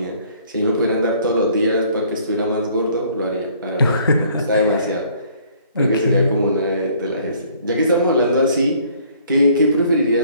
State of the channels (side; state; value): both; inverted; correlation -0.59